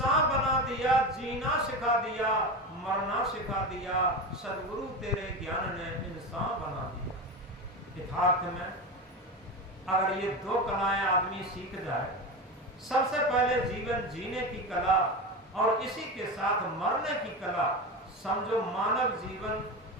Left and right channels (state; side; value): normal; both; correlation 0.22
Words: बना दिया, जीना सिखा दिया, मरना सिखा दिया। सदगुरु तेरे ज्ञान ने इंसान बना दिया। यथार्थ में अगर ये दो कलाएं आदमी सीख जाए, सबसे पहले जीवन जीने की कला और इसी के साथ मरने की कला, समझो मानव जीवन